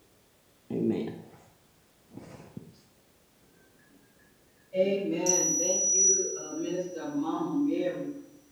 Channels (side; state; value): both; identical; correlation 1.00